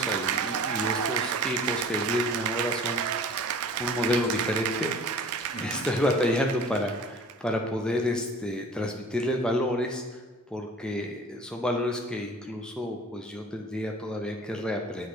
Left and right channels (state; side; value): normal; both; correlation 0.44